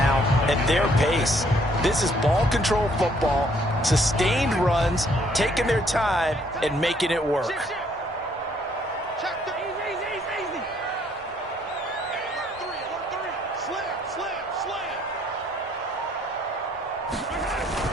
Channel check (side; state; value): both; normal; correlation 0.65